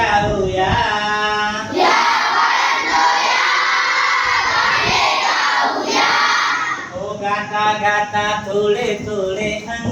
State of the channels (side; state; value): both; identical; correlation 1.00